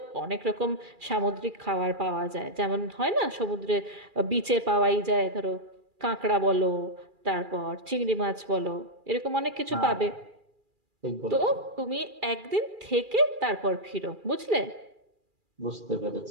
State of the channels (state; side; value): late; left; 2.4 ms